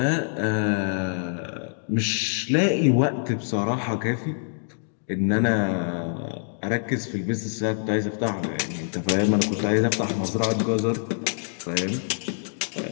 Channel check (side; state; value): right; silent; digital silence